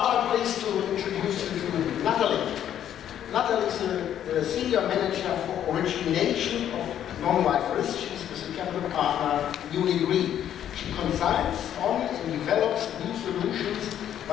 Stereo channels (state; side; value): quieter; right; 10.4 dB